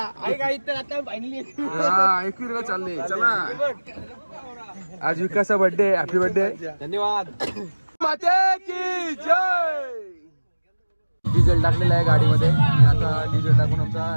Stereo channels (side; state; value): both; inverted; correlation -1.00